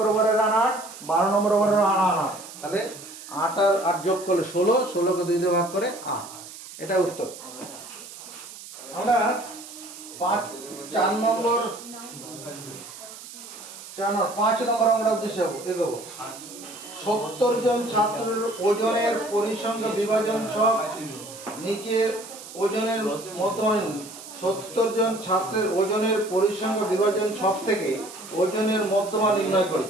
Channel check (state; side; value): noise; right; hiss, 15 dB below the sound